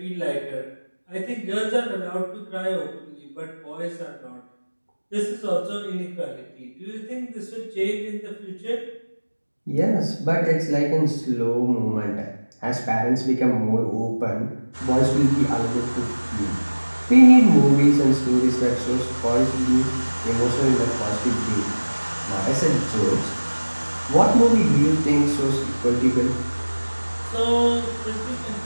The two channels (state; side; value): inverted; both; correlation -1.00